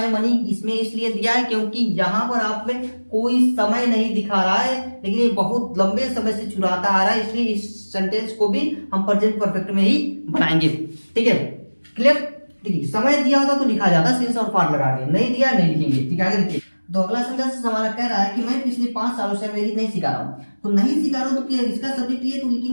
money, इसमें इसलिए दिया है क्योंकि यहाँ पर आप में कोई समय नहीं दिखा रहा है, लेकिन ये बहुत लंबे समय से चुराता आ रहा है, इसलिए इस सेंटेंस को भी हम प्रेजेंट परफेक्ट में ही बनाएंगे। ठीक है, क्लियर? देखिए समय दिया होता तो लिखा जाता सिंस और फॉर लगा के, नहीं दिया नहीं लिखेंगे। ठीक है, आगे देखिए। तो अगला सेंटेंस हमारा कह रहा है कि मैं पिछले 5 सालों से अंग्रेजी नहीं सिखा रहा हूँ, तो नहीं सिखा रहा हूँ तो इसका सब्जेक्ट ये, तो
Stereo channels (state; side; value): inverted; both; correlation -1.00